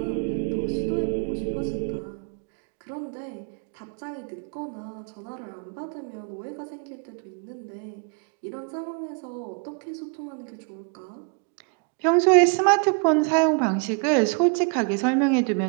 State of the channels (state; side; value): quieter; left; 38.2 dB